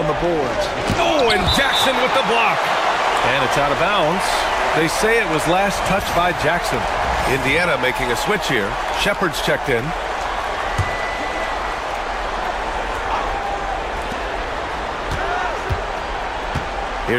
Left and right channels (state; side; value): identical; both; correlation 1.00